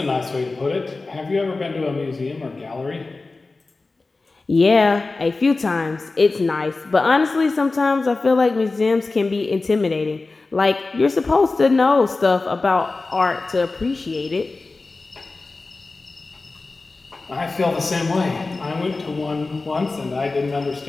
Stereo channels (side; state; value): right; quieter; 3.6 dB